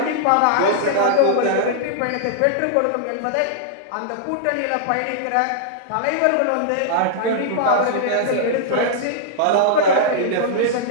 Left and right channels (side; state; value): both; different; correlation -0.02